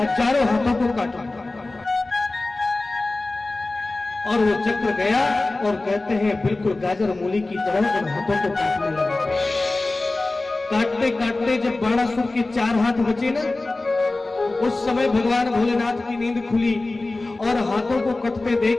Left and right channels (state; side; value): quieter; right; 3.1 dB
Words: हाथों को काटो। और वो चक्र गया और कहते हैं बिल्कुल गाजर मूली की तरह उन हाथों को काटने लगा। काटते काटते जब बाणासुर के 4 हाथ बचे ना, उस समय भगवान भोलेनाथ की नींद खुली और हाथों को कटते देख